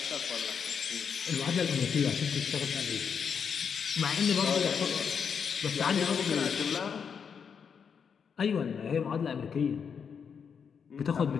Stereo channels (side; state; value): right; quieter; 6.7 dB